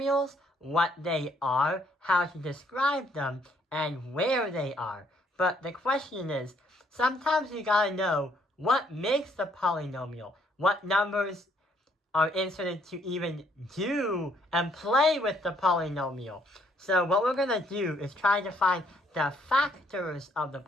what they are, how to describe them, and where they are. But the question is, sometimes you gotta know what makes the polynomial, what numbers are inserted to even do and play with the polynomial. So what we're going to do is try to find the factors of the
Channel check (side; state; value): both; normal; correlation 0.68